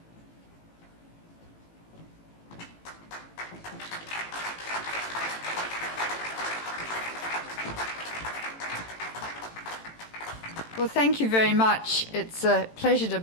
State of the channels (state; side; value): late; right; 18 ms